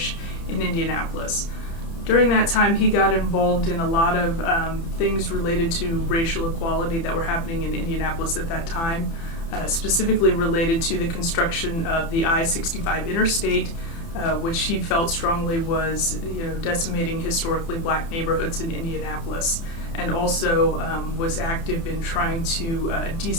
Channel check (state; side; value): late; right; 30 ms